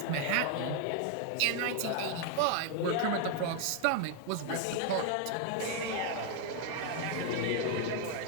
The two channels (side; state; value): both; different; correlation 0.01